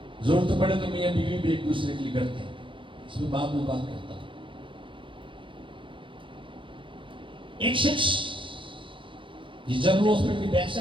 ضرورت پڑے تو میاں بیوی بھی ایک دوسرے کے لیے کرتے ہیں، اس میں بعد میں بات کرتا ہوں۔ ایک شخص یہ جنرل ہاسپٹل کی بیک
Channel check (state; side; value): late; left; 0.25 ms